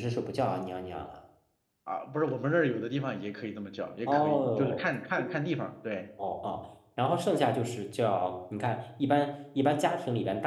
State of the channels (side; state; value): both; identical; correlation 1.00